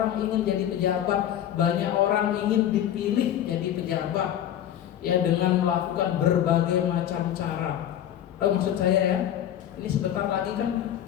ingin jadi pejabat, banyak orang ingin dipilih jadi pejabat ya, dengan melakukan berbagai macam cara. Tahu maksud saya ya? Ini sebentar lagi kan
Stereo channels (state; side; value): quieter; right; 10.8 dB